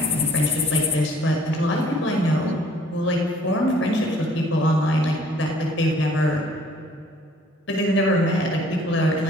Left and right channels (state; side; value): normal; both; correlation 0.58